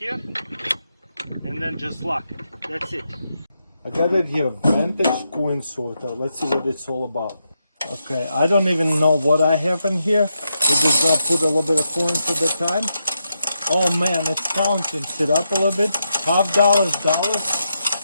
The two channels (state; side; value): inverted; both; correlation -0.84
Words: and then just lock it. That's it. I got it here, Vantage coin sorter. Let's see what it's all about. Okay, I don't even know what I have in here. We're just gonna put a little bit of coins at a time. Oh man, it's counting. Sit up a little bit. $50, dollars.